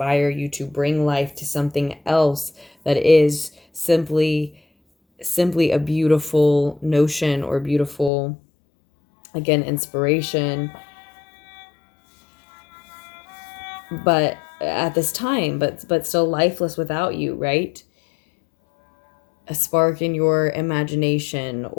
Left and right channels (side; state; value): right; drops out; at 8.1 s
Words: you to bring life to something else that is simply a beautiful notion or beautiful, again, inspiration, but at this time, but still lifeless without you, right? A spark in your imagination,